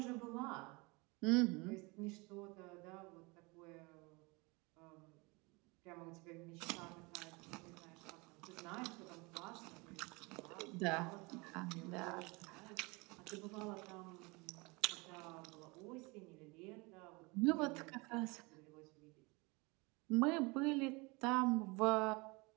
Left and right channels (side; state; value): left; quieter; 26.7 dB